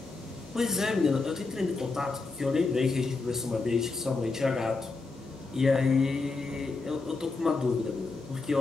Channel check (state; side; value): quieter; right; 3.8 dB